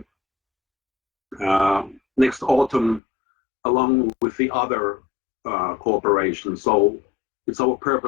next autumn along with the other cooperation. So it's our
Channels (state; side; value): drops out; right; at 3.0 s